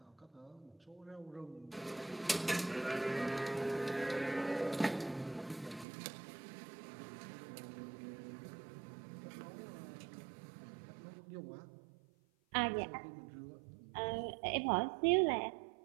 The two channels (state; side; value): drops out; left; at 5.9 s